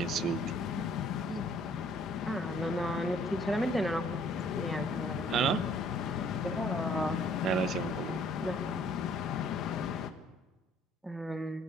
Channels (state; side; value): normal; both; correlation 0.60